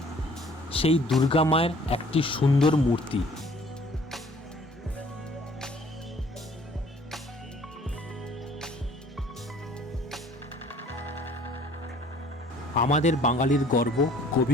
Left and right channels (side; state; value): both; normal; correlation 0.55